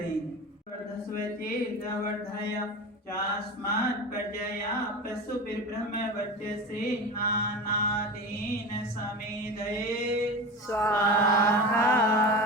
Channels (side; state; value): both; normal; correlation 0.28